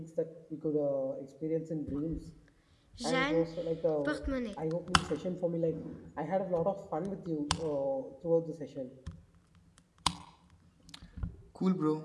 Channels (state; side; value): identical; both; correlation 1.00